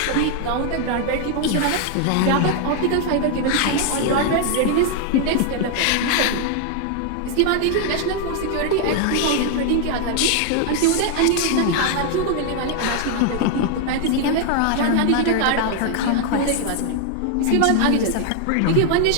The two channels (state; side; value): different; both; correlation 0.00